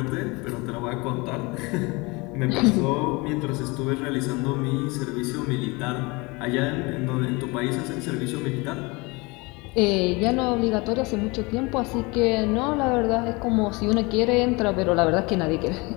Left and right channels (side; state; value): right; quieter; 26.1 dB